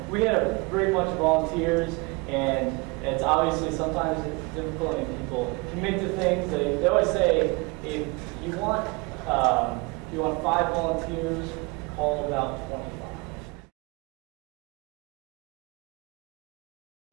we had a great bunch of volunteers, and it's obviously sometimes it's difficult when people commit to things. They always say if you want 5 volunteers, call about 25.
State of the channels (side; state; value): left; quieter; 27.8 dB